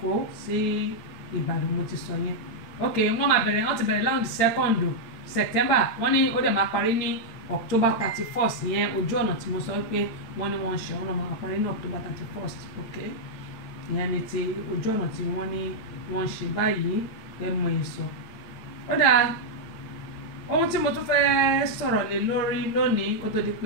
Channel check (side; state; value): right; late; 8.9 ms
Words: sí Ìbàdàn mo ti sọ yẹn ok wọ́n ti bẹ̀rẹ̀ láwọn 2nd September wọ́n ní ó dẹ̀ máa parí ní October 31st yẹn ojú ọ̀nà tí mo sọ pé wọ́n ní wọ́n ń ṣe ọ̀nà máa parí ní October 31st ok ìyẹn ni ti ojú ọ̀nà tí wọ́n ní wọ́n ń ṣe báyìí ẹ mọ ìsọ. Ó dáa ohun tí mo tún fẹ́ sọ̀rọ̀ lé lórí lónìí kó tó di